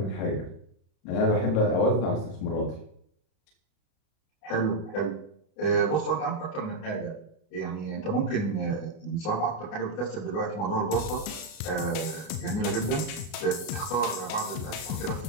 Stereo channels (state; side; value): late; right; 33 ms